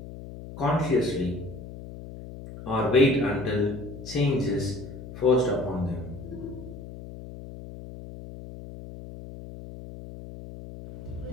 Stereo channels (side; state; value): left; noise; hum, 13 dB below the sound